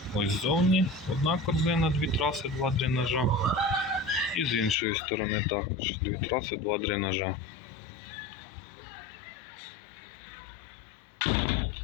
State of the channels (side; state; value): right; drops out; at 4.8 s